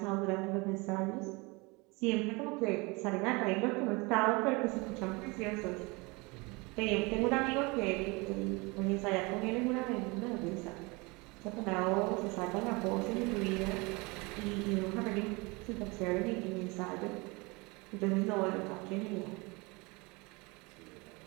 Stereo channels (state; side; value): quieter; left; 26.4 dB